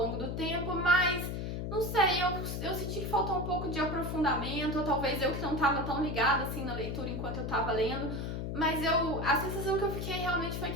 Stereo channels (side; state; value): left; noise; hum, 3 dB below the sound